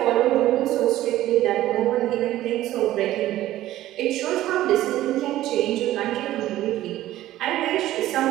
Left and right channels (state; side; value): quieter; left; 14.5 dB